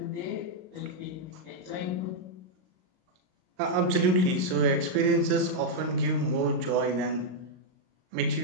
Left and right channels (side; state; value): left; late; 38 ms